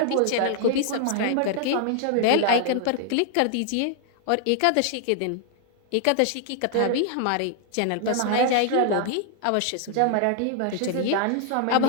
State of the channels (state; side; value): different; both; correlation 0.00